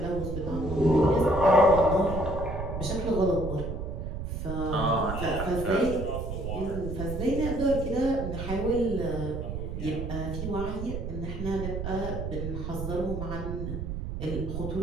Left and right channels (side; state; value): right; noise; rumble, 5 dB below the sound